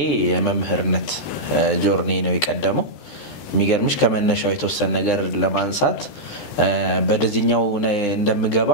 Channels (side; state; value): right; late; 13 ms